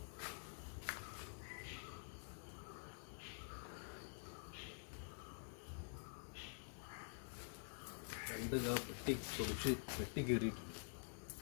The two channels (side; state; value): right; silent; digital silence